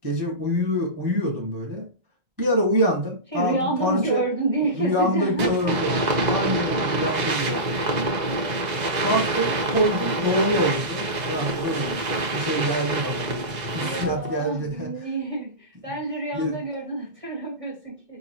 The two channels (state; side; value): late; left; 2.0 ms